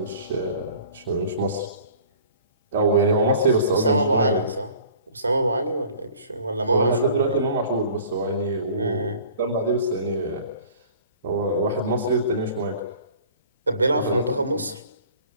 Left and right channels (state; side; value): inverted; both; correlation -0.49